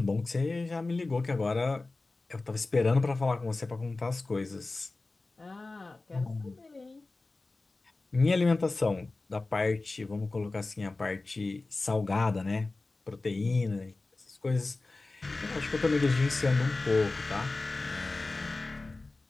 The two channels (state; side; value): quieter; right; 3.4 dB